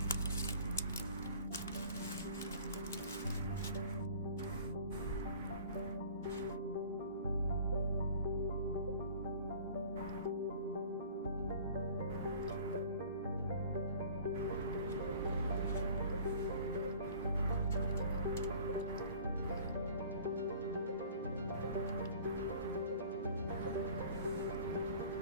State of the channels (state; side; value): inverted; both; correlation -0.48